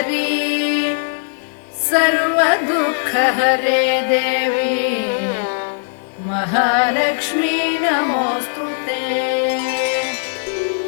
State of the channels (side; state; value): right; silent; digital silence